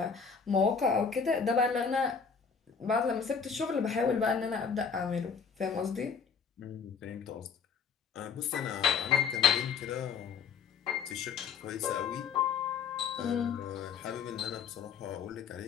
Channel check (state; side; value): quieter; right; 6.2 dB